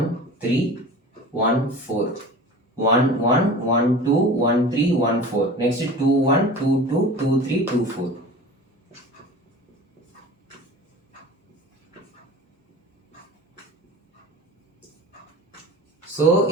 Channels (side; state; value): both; normal; correlation 0.38